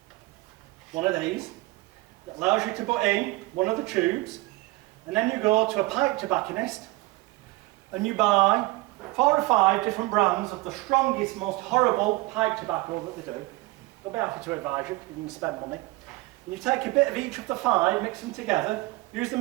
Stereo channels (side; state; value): left; quieter; 21.3 dB